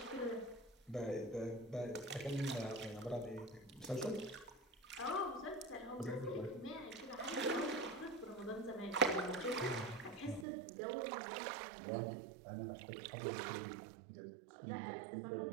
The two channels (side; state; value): left; drops out; at 10.5 s